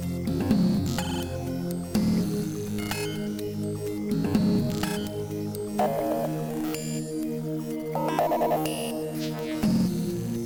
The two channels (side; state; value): both; identical; correlation 1.00